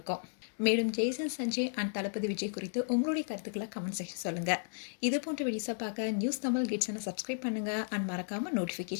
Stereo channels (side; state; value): right; silent; digital silence